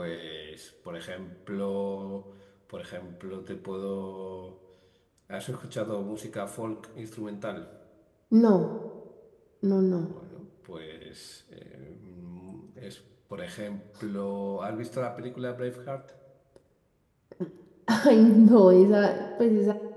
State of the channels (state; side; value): identical; both; correlation 1.00